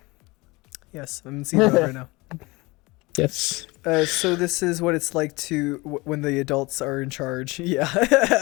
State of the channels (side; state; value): right; quieter; 23.5 dB